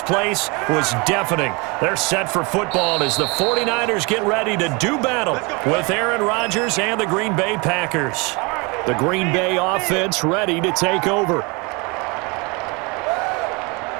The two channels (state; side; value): quieter; left; 28.5 dB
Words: place was deafening. They're set for football as the 49ers get ready to do battle with Aaron Rodgers and the Green Bay Packers. The Green Bay offense ready to take over.